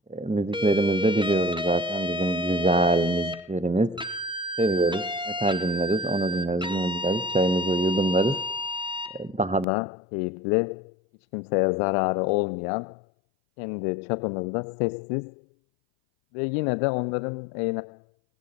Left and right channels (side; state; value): right; drops out; at 9.7 s